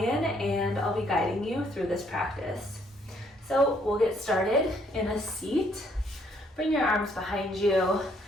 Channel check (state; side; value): normal; both; correlation 0.68